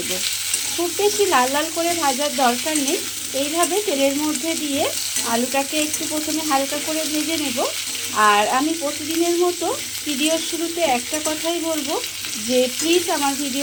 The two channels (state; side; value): identical; both; correlation 1.00